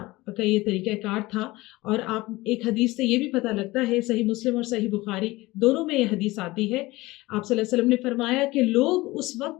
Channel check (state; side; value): quieter; right; 20.1 dB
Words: का ये तरीक़ाकार था और आप एक हदीस से ये भी पता लगता है, सही मुस्लिम और सही बुख़ारी दोनों में ये हदीस आती है। आप सल्लल्लाहु अलैहि वसल्लम ने फ़रमाया कि लोग उस